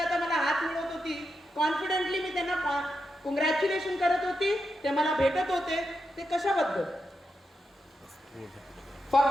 आता मला हात मिळवत होती, कॉन्फिडेंटली मी त्यांना कॉंग्रॅच्युलेशन करत होती, ते मला भेटत होते, ते कशाबद्दल,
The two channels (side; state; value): both; normal; correlation 0.86